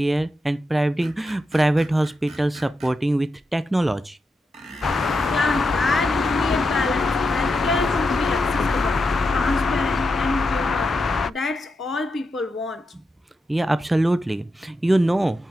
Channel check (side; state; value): both; normal; correlation 0.87